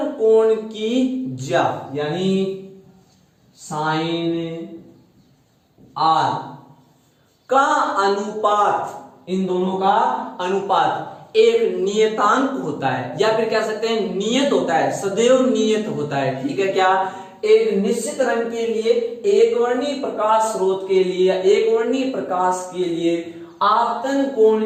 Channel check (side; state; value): both; identical; correlation 1.00